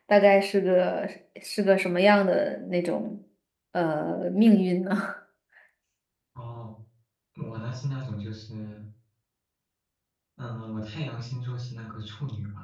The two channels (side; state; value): both; identical; correlation 1.00